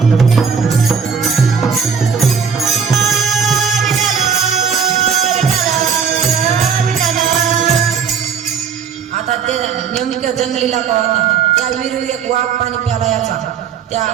आता ते नेमकं जंगलीला का होता. त्या विहिरीवर एक वाघ पाणी प्याला याचा. त्या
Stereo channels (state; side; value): quieter; left; 6.6 dB